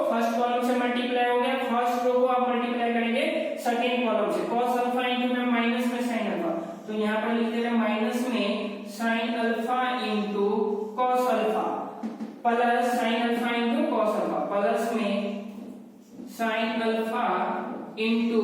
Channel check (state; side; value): identical; both; correlation 1.00